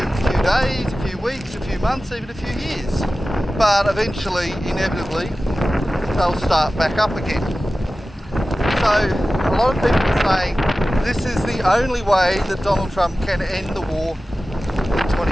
days, a few weeks, a few months, even a few years, but eventually, inevitably, they'll start back up again. So a lot of people are saying this is the only way that Donald Trump can end the war in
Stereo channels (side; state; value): both; normal; correlation 0.95